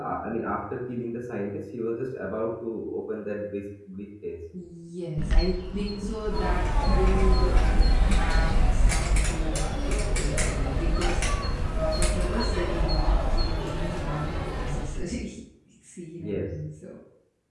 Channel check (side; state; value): both; identical; correlation 1.00